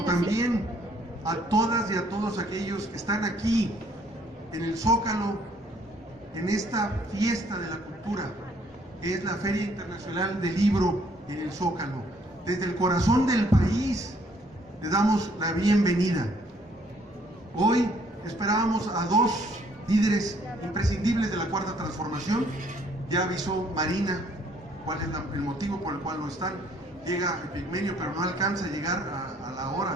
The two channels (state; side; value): normal; both; correlation 0.64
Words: también a todas y a todos aquellos que están aquí en el Zócalo, en esta fiesta de la cultura, que es la Feria Internacional del Libro en el Zócalo. Desde el corazón del país les damos la bienvenida. Hoy esperábamos a dos líderes imprescindibles de la Cuarta Transformación. Ya avisó Marina cuál es el motivo por el cual no están. Llega Epigmenio, pero no alcanza a llegar a la hora